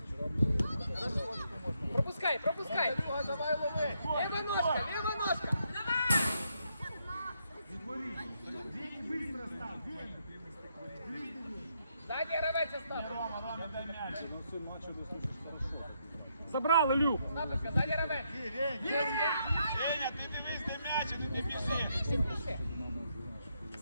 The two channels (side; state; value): both; inverted; correlation -0.77